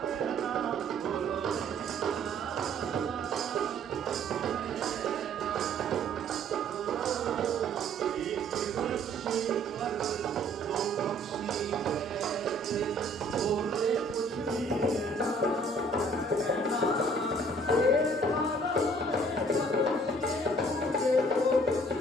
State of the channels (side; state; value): both; normal; correlation 0.57